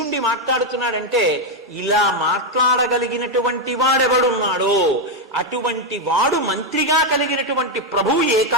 మాట్లాడుతున్నాడంటే ఇలా మాట్లాడగలిగినటువంటి వాడెవడున్నాడో అటువంటి వాడు మంత్రిగా కలిగినటువంటి ప్రభువు ఏ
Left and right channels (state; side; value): normal; both; correlation 0.04